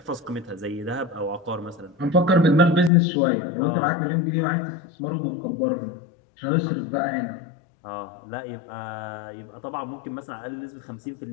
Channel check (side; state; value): right; drops out; at 2.9 s